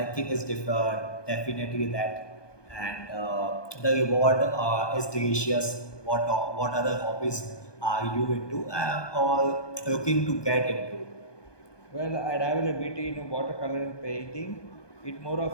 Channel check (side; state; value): right; late; 1.2 ms